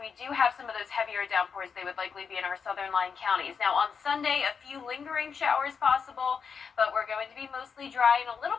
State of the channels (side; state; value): right; quieter; 6.1 dB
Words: do have some of those heavier downpours, they would likely be in our southern line counties. Now on Sunday, a few lingering showers possible, but we're going to be mostly dry and a little